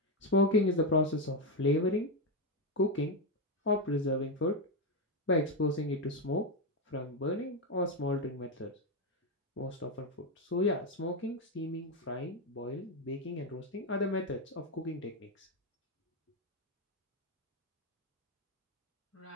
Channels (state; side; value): normal; both; correlation 0.07